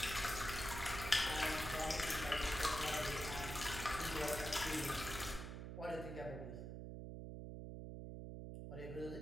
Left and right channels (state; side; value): noise; right; hum, 7 dB below the sound